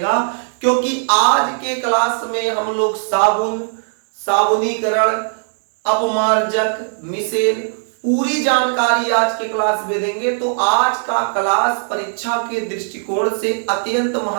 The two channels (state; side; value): silent; left; 67 dB below the other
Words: क्योंकि आज के क्लास में हम लोग साबुनीकरण, अपमार्जक, मिसेल पूरी जानकारी आज के क्लास में देंगे। तो आज का क्लास परीक्षा के दृष्टिकोण से अत्यंत